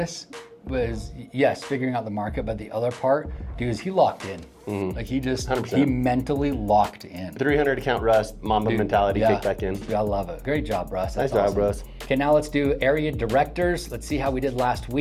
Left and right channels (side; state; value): both; identical; correlation 1.00